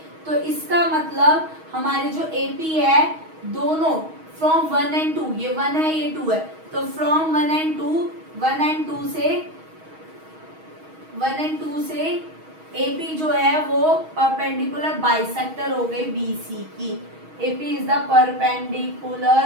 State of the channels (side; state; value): left; late; 6.3 ms